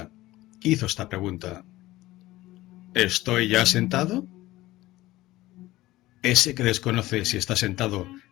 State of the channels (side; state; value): right; quieter; 17.5 dB